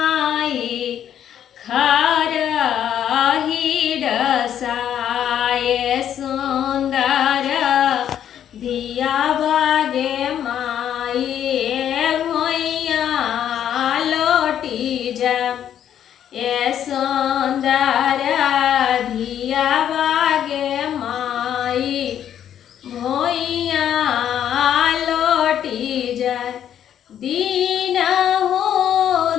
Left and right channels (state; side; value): quieter; right; 9.9 dB